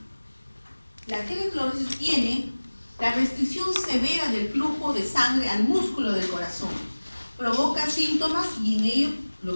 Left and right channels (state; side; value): inverted; both; correlation -1.00